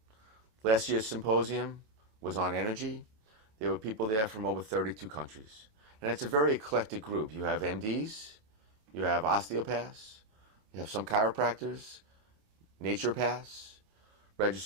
Last year's symposium was on energy. There were people there from over 32 countries. And it's a very eclectic group. You have MDs, you have osteopaths, you have some chiropractors, naturopaths,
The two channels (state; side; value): late; left; 27 ms